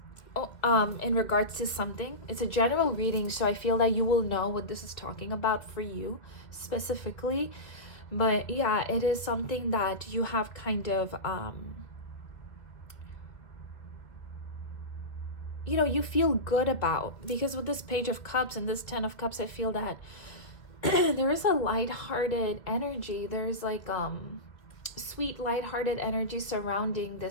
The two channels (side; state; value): right; late; 2.3 ms